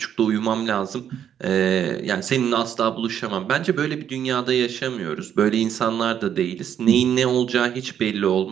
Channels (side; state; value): left; quieter; 9.2 dB